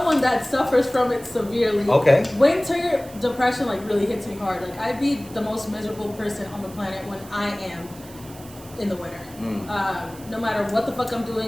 that suffers from it severely, winter depression like really hits me hard. Like I'd be the most miserable person on the planet when I am in the winter. No matter what the fuck I'm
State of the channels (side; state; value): right; noise; hiss, 20 dB below the sound